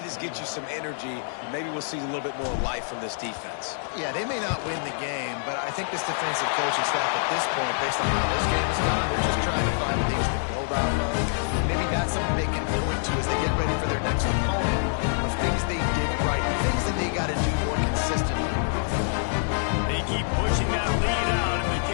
this gets you some energy. Maybe we'll see a little bit more life from this defense. Yeah, they may not win the game, but I think this defensive coaching staff at this point, based on how this game is gone, they're just trying to find things to build off of. Maybe that's something they can point to as they get ready for their next opponent, of things they did right, things that they got to do more consistently. They keep pushing that lead out, and the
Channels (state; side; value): silent; right; digital silence